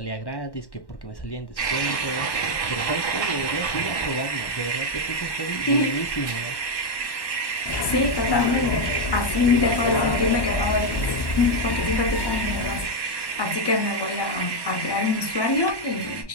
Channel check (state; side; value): late; right; 1.1 ms